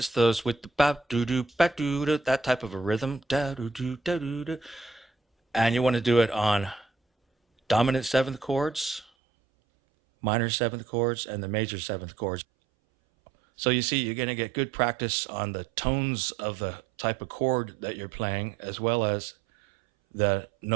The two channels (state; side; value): drops out; left; at 9.1 s